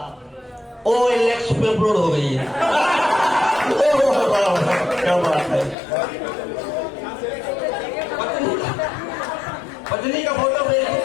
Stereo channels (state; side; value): drops out; right; at 5.8 s